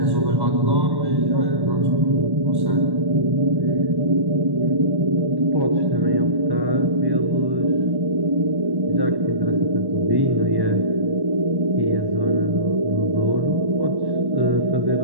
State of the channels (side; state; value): left; late; 1.1 ms